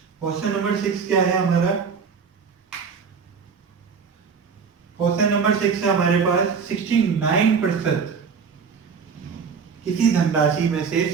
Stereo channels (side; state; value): left; quieter; 5.9 dB